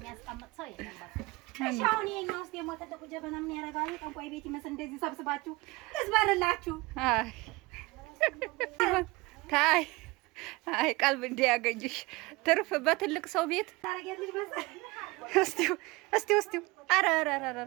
ሰው የለም። በቃ እሺ አሁን የኛው ውስጥ ደግሞ ትልቁ ጀበና ምን ያደርጋል? ጠንቋይ ቤት ይመስል እንደዚህ ሰብስባችሁ ልዝበርላችሁ። አይ ቀልብ እንዲያገኝሽ ትርፍ በትልቅ ሰው ቤት ታረጋለሽ መሰል። እስቲ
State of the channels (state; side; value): quieter; left; 23.4 dB